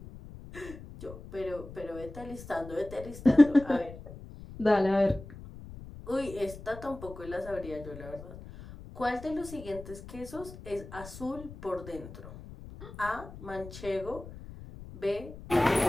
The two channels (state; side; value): noise; left; rumble, 14 dB below the sound